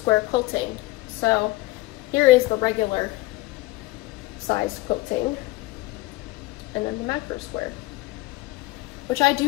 quilting. So here is the regular size quilting, and then the macro square, which I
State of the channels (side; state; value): right; quieter; 19.2 dB